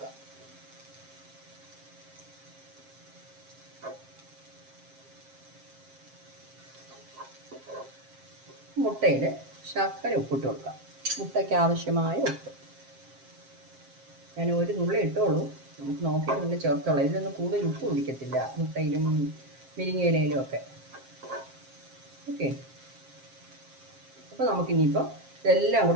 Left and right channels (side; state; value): left; late; 7.5 ms